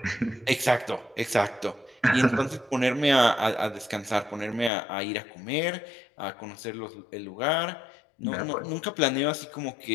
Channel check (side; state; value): right; drops out; at 4.7 s